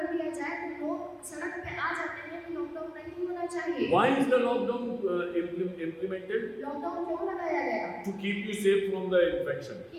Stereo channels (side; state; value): both; identical; correlation 1.00